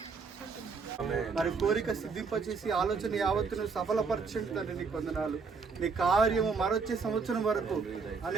మరి కోరిక సిద్ధింపచేసి ఆలోచన యావత్తును సఫలపరచండి తండ్రి. నీ వందనాలు. నీ కార్యము మరొచ్చే సంవత్సరం వరకు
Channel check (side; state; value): left; quieter; 4.9 dB